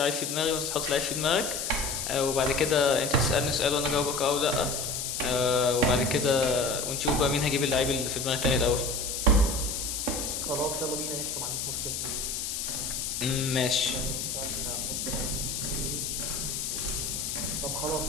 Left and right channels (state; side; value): noise; left; hiss, 3 dB below the sound